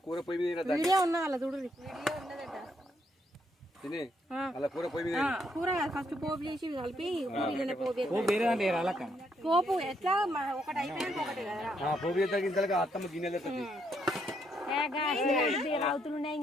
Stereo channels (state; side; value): normal; both; correlation 0.74